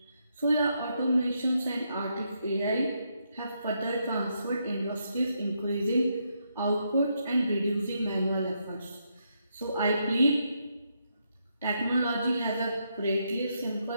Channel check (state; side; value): inverted; both; correlation -0.79